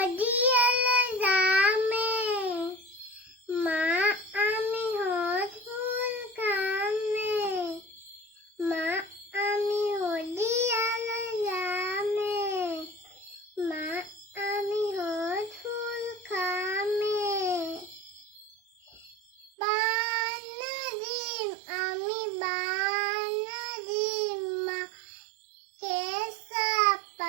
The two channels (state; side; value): drops out; left; at 19.5 s